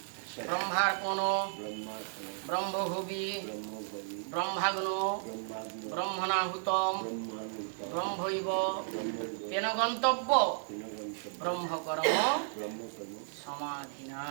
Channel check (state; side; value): silent; left; 55 dB below the other